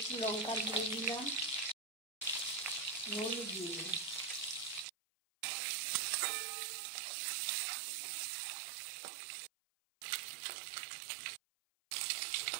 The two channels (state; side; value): drops out; left; at 4.9 s